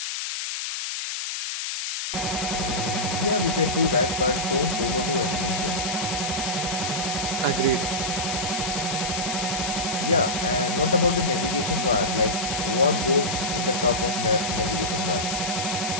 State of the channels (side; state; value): left; noise; hiss, 3 dB below the sound